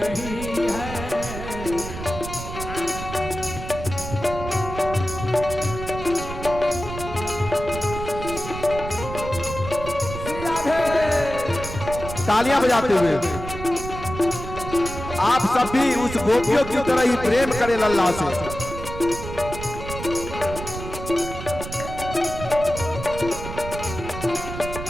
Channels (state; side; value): noise; right; rumble, 9 dB below the sound